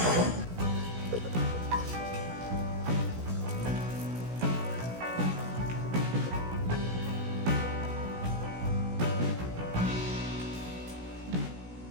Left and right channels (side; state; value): left; late; 16 ms